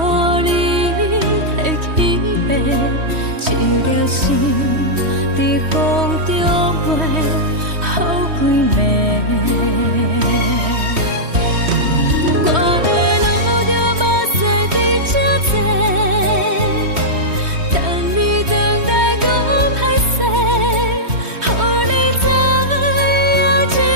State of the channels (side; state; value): left; late; 3.1 ms